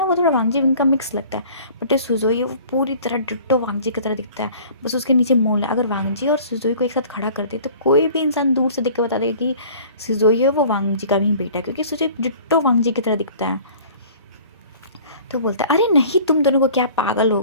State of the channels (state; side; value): inverted; both; correlation -0.47